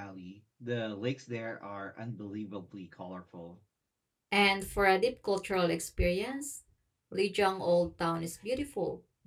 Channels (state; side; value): identical; both; correlation 1.00